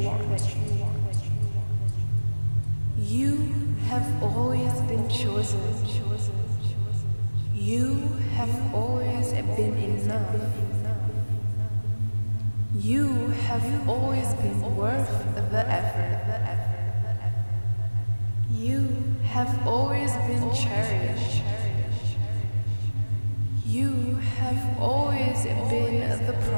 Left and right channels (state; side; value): inverted; both; correlation -1.00